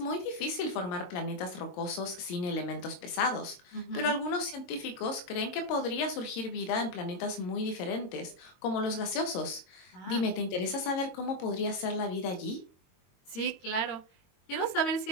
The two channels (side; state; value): right; late; 22 ms